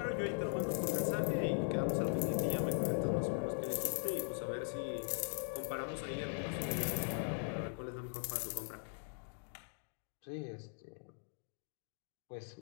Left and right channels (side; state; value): right; silent; digital silence